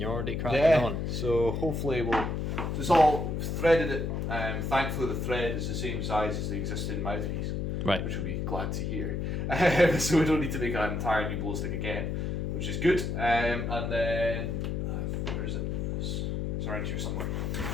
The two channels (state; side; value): noise; left; hum, 1 dB below the sound